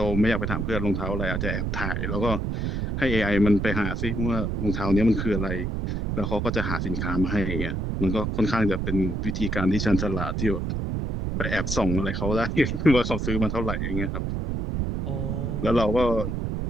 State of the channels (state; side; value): noise; right; rumble, 1 dB below the sound